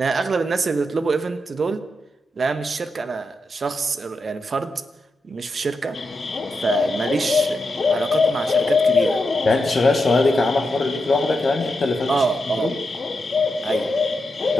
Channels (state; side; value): normal; both; correlation 0.86